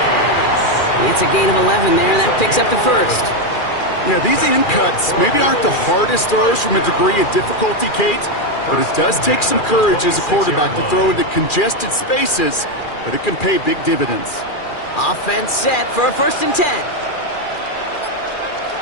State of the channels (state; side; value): late; right; 2.4 ms